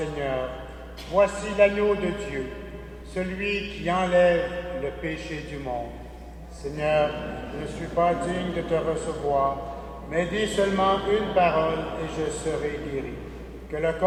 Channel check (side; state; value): both; identical; correlation 1.00